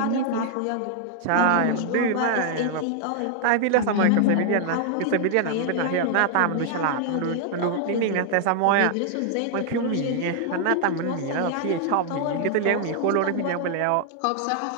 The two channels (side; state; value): both; different; correlation 0.00